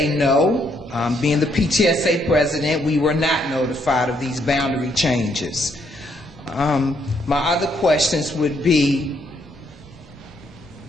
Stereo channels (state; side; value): normal; both; correlation 0.72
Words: no. Being the PTSA president, we were not notified of these boundary changes. My other questions would be